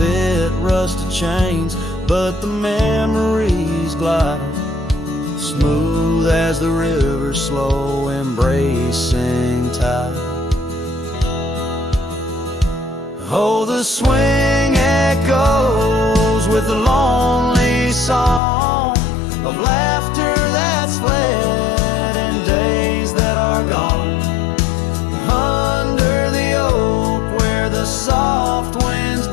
Rusted chains, but the memories glide smooth as the river's slow embracing tide. Oh, the swing echoes with the lonely song of laughter that's fled and days that are gone. Under the oak where the soft winds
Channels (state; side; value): drops out; right; at 18.4 s